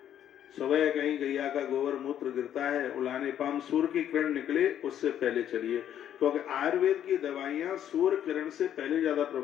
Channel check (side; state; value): right; quieter; 10.3 dB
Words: सुबह कहीं गैया का गोबर मूत्र गिरता है, उलाने पाम, सूर्य की किरण निकले उससे पहले चलिए, क्योंकि आयुर्वेद की दवाइयां सूर्य किरण से पहले ज्यादा